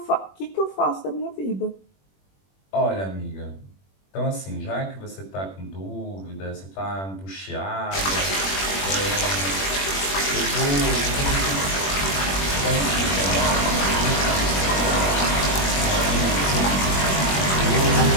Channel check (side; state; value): right; late; 21 ms